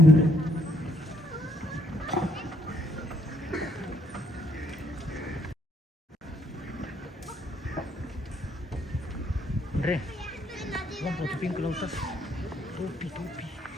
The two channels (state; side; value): normal; both; correlation 0.69